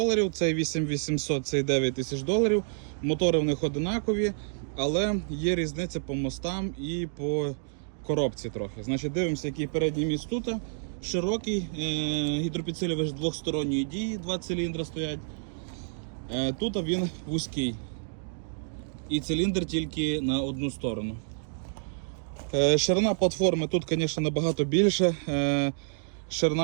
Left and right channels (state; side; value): silent; left; digital silence